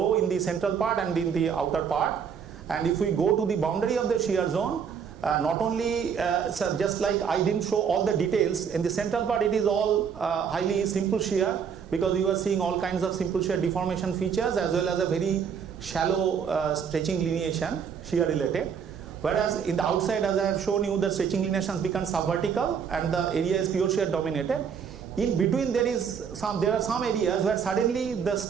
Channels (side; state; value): left; quieter; 7.1 dB